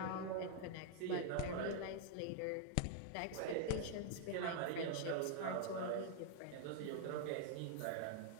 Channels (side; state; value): both; different; correlation -0.01